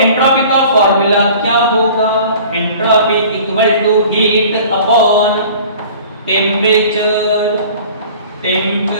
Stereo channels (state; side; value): inverted; both; correlation -0.46